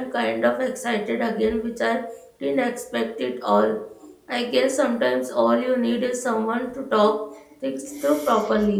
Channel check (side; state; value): both; identical; correlation 1.00